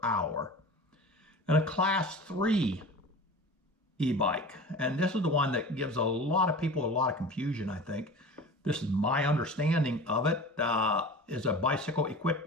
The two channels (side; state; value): both; normal; correlation 0.36